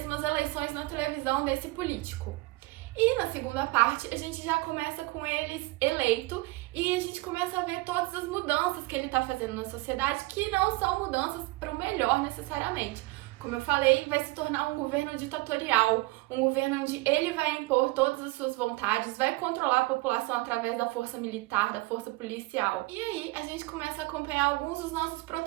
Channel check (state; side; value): quieter; left; 21.9 dB